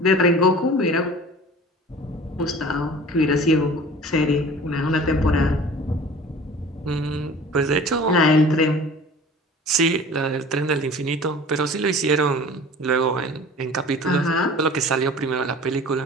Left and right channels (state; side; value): normal; both; correlation 0.42